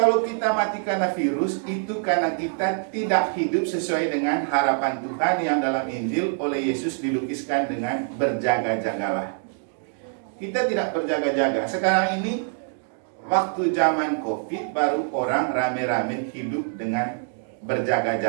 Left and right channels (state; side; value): silent; left; 55 dB below the other